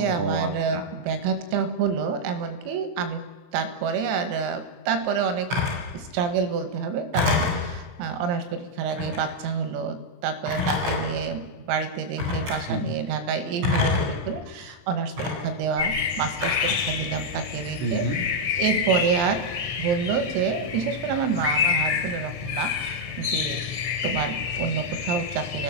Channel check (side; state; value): left; late; 23 ms